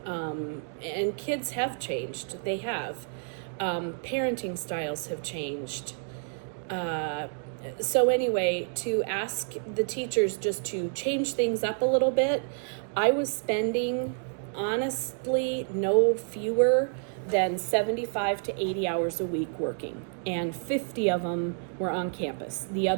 And kids have changed. They have. Parenting styles have changed. So anyway, to ask the teachers just to change things up a little bit, I was spending, honestly, no fewer than 75 to 80 hours a week working, and 50 of them were on campus. The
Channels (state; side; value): silent; left; 58 dB below the other